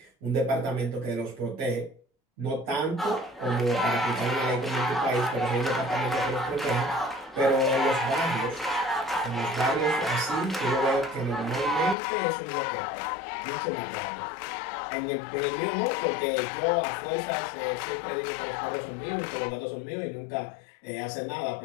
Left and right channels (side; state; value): right; drops out; at 12.0 s